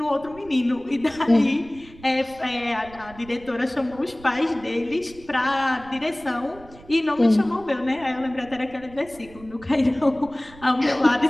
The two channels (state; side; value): noise; right; rumble, 21 dB below the sound